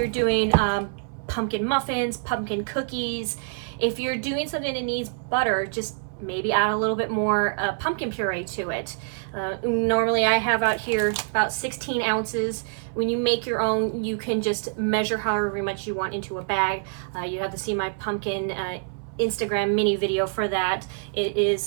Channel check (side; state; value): left; silent; 61 dB below the other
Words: doing pumpkin muffins, pumpkin cookies, if you're doing something that needs butter, just maybe add a little bit more pumpkin puree to it. Normally I have out here about 16 ounces. When you make your own, you can just measure however much you want into a bag. You have to see my pumpkin Instagram mini video for that. It